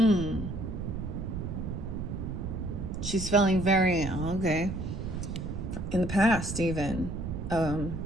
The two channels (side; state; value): right; noise; rumble, 5 dB below the sound